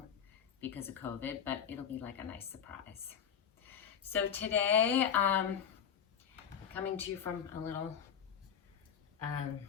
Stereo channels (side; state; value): right; quieter; 8.1 dB